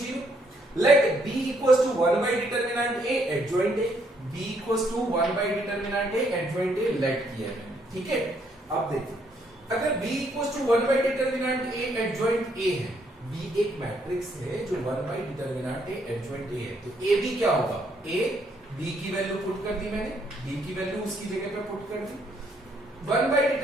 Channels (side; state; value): both; normal; correlation 0.71